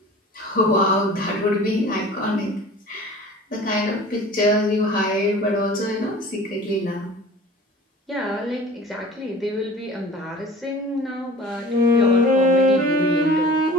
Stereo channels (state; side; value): normal; both; correlation 0.43